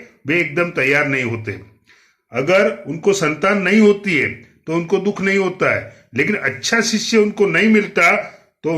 वे एकदम तैयार नहीं होते। अगर उनको संतान नहीं होती है तो उनको दुख नहीं होता है, लेकिन अच्छा शिष्य उनको नहीं मिलता तो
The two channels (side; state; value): both; identical; correlation 1.00